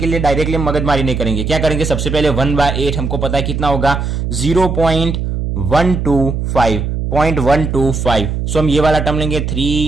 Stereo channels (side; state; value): right; noise; hum, 2 dB below the sound